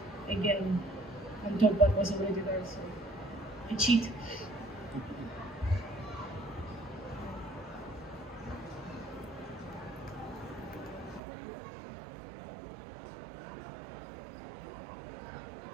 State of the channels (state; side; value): drops out; left; at 11.2 s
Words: again on top what was already there, so I cheat.